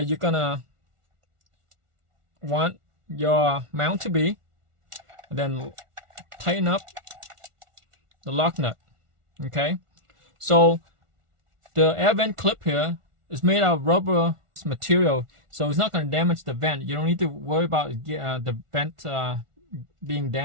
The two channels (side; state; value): left; late; 1.4 ms